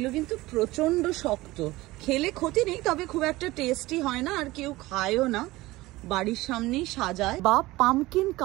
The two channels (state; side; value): quieter; left; 19.1 dB